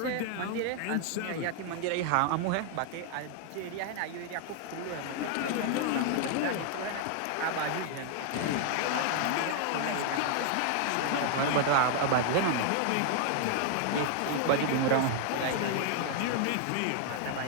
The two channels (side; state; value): both; different; correlation 0.00